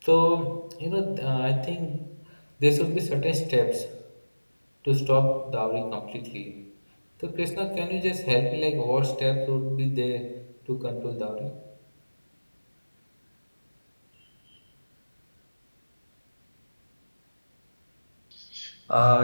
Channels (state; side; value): inverted; both; correlation -1.00